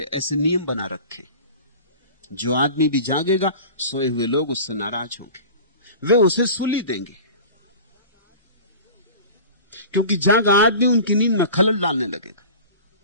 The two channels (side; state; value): both; inverted; correlation -0.38